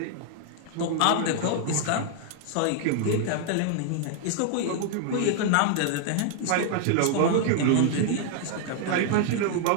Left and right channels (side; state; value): both; different; correlation 0.00